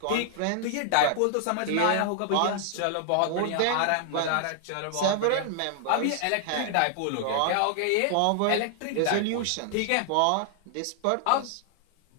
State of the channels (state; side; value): different; both; correlation 0.00